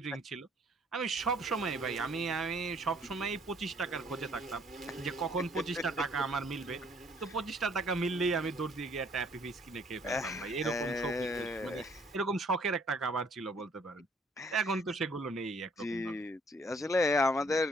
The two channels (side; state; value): both; normal; correlation 0.62